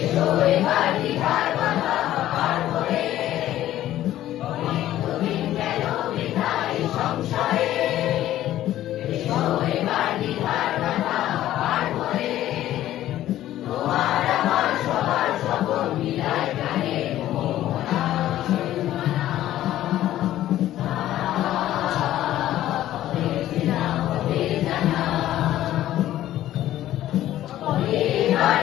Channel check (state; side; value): quieter; right; 13.5 dB